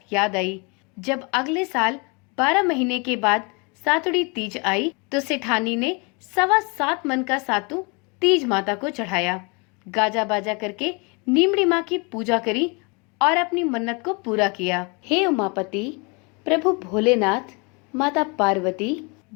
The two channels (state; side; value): quieter; right; 30.8 dB